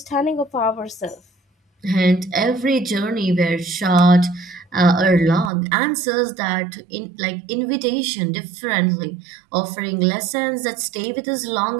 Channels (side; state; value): left; drops out; at 5.5 s